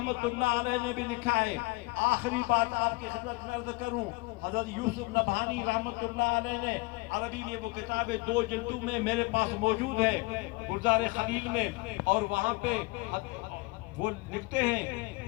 اللہ علیہ نے بھی لکھا ہے. آخری بات آپ کی خدمت میں عرض کروں، حضرت یوسف نبہانی رحمت اللہ علیہ نے عربی میں وہ کتاب 2 جلدوں میں میرے پاس موجود ہے گلزار خلیل میں، اور وہاں پہ وہ لکھتے ہیں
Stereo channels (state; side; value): quieter; right; 24.9 dB